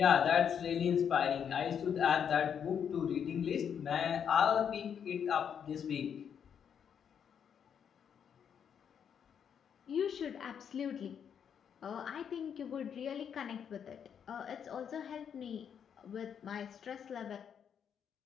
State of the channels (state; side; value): quieter; right; 7.9 dB